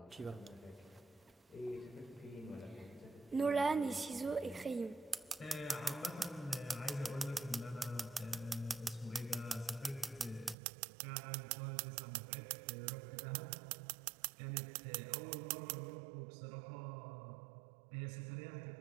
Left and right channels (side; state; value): left; drops out; at 10.6 s